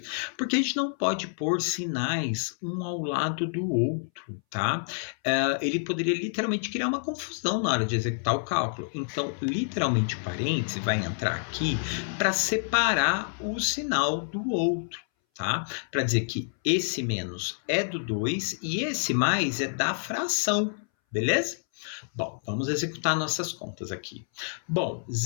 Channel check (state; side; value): silent; right; 59 dB below the other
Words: Porque a gente não pode pôr sinais um ao lado do outro, tá? Ele poderia literalmente criar uma confusão na hora de executar o cálculo. Então, literalmente, o parêntese vai entrar aqui para separar o sinal do outro. Tá? Para dizer que esse menos é do 2 e esse mais é da fração, beleza? Bom, vamos executar nossas contas aqui. Bom,